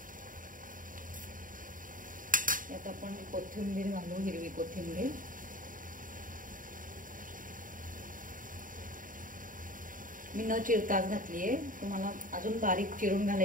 यात आपण कोथिंबीर घालू, हिरवी कोथिंबीर। मी न चिरताच घातली आहे, तुम्हाला अजून बारीक चिरून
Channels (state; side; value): late; left; 0.39 ms